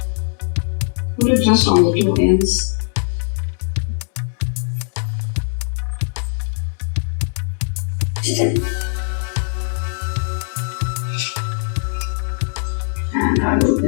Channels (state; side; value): silent; right; 66 dB below the other